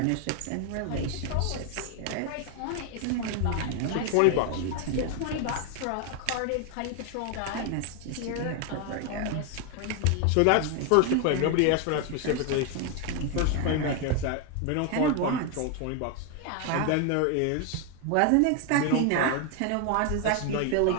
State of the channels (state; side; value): different; both; correlation 0.01